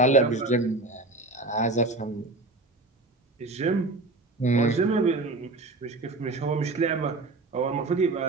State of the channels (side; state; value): left; quieter; 3.1 dB